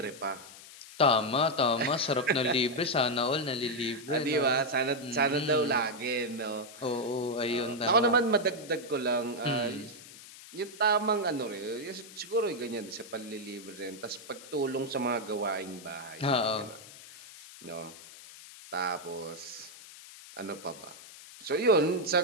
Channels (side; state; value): left; noise; hiss, 17 dB below the sound